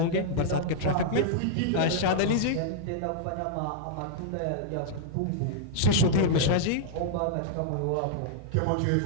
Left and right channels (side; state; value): both; different; correlation -0.01